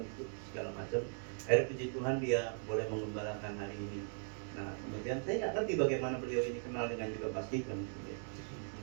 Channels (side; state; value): left; silent; digital silence